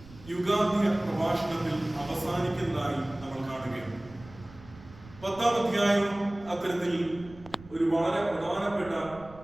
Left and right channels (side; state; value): right; noise; rumble, 20 dB below the sound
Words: യുഗാന്ത്യ പ്രഭാഷണത്തിൽ അവസാനിക്കുന്നതായി നമ്മൾ കാണുകയാണ്. 10-ാം അധ്യായം അത്തരത്തിൽ ഒരു വളരെ പ്രധാനപ്പെട്ട